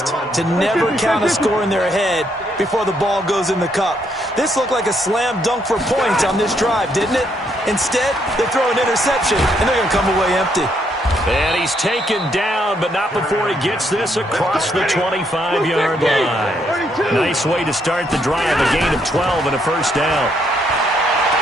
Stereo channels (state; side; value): normal; both; correlation 0.73